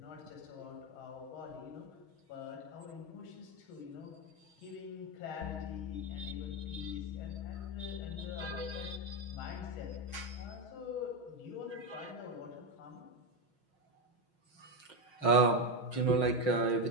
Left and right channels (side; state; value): right; late; 6.3 ms